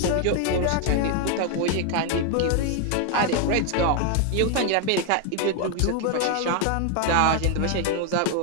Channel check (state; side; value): different; both; correlation 0.01